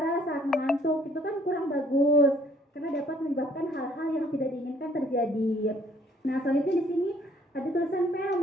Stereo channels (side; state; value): both; normal; correlation 0.61